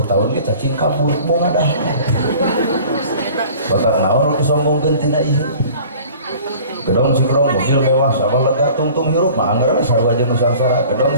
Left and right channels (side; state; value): both; inverted; correlation -0.46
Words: tahun ge cacing kabur mau ngadah batak naon nu disombongkeun tina ieu gedong sikrong mobil mewah sabah lega tungtung hirup mah anggar sarua jeung nusangsara gedong